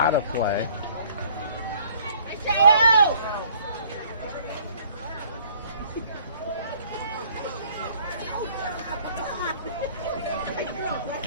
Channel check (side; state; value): both; inverted; correlation -0.56